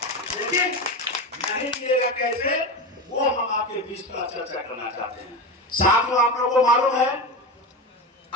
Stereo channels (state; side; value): normal; both; correlation 0.21